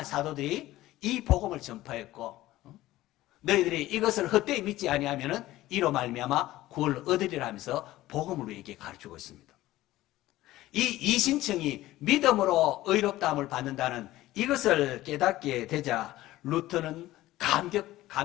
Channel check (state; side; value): quieter; right; 16.2 dB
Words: 사도들이 이 복음을 전파했고, 너희들이 이것을 헛되이 믿지 아니하면은 이로 말미암아 구원을 얻으리라 하면서 복음을 우리에게 가르치고 있습니다. 이 이신청이 믿음으로 의롭다함을 받는다는 이것을 깨닫게 되자 루터는